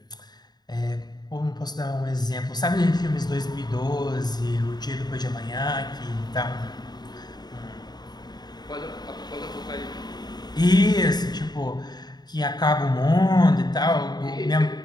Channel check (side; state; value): right; late; 0.20 ms